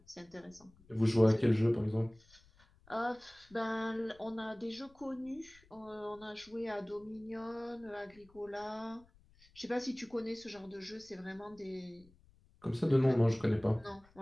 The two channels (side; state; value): left; noise; rumble, 28 dB below the sound